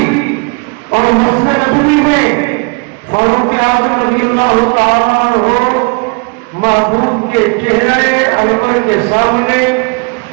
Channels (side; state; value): left; quieter; 31.7 dB